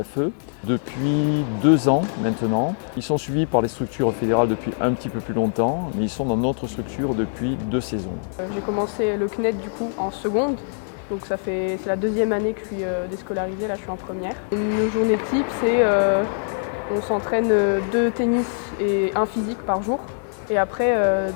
depuis 2 ans maintenant. Ils sont suivis par les structures fédérales depuis un petit peu plus longtemps, mais ils sont dans notre structure depuis 2 saisons. J'ai commencé le CNED du coup en seconde, donc c'est la 2e année que je suis déscolarisée, là je suis en première. Une journée type, c'est on s'entraîne 2 tennis et 1 physique par jour. Et après,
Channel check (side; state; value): right; silent; digital silence